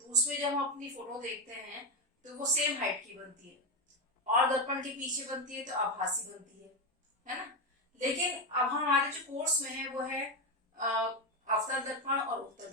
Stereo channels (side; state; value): both; normal; correlation 0.10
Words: उसमें जब हम अपनी फोटो देखते हैं तो वो सेम हाइट की बनती है, और दर्पण के पीछे बनती है तो आभासी बनती है ना। लेकिन अब हमारे जो कोर्स में है वो है अवतल दर्पण और उत्तल